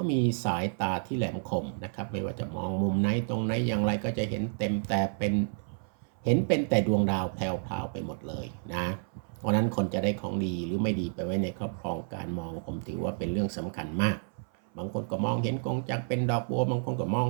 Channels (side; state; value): left; silent; 58 dB below the other